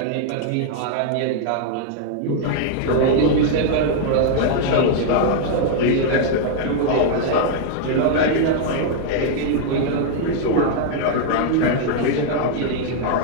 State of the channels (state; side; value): different; both; correlation 0.00